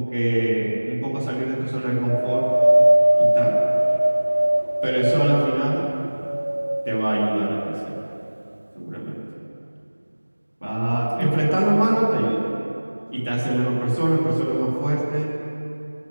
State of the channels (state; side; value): inverted; both; correlation -1.00